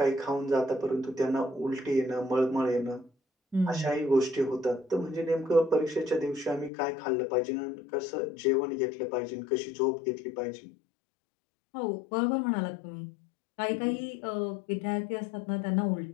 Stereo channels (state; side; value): drops out; right; at 6.7 s